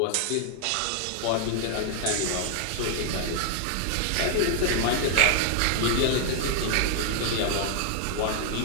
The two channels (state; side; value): different; both; correlation 0.00